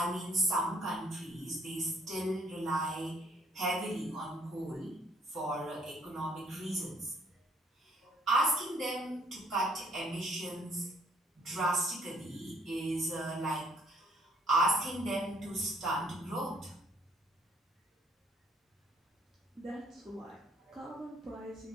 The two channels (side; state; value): both; normal; correlation 0.64